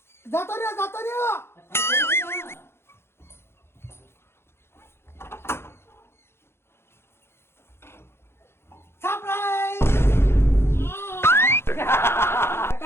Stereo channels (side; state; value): right; late; 0.12 ms